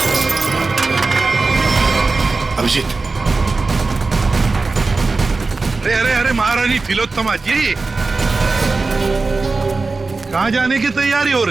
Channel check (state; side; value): quieter; left; 3.8 dB